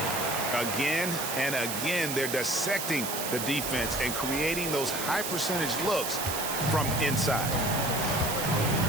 Again and again, they're dissecting the defense and creating those high percentage looks from inside.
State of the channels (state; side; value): noise; right; hiss, 4 dB below the sound